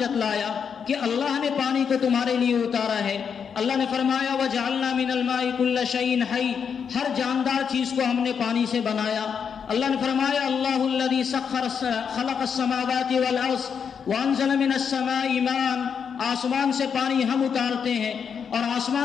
کہ اللہ نے پانی کو تمہارے لیے اتارا ہے۔ اللہ نے فرمایا وَجَعَلْنَا مِنَ الْمَاءِ كُلَّ شَيْءٍ حَيٍّ، ہر جاندار چیز کو ہم نے پانی سے بنایا۔ اللہ نے فرمایا اللہ الذي خلق السماوات والارض وانزل من السماء ماء، آسمان سے پانی ہم اتارتے ہیں، اور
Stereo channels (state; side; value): quieter; right; 6.9 dB